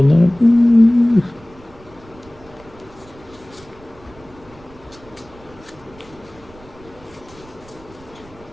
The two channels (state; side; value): noise; right; rumble, 23 dB below the sound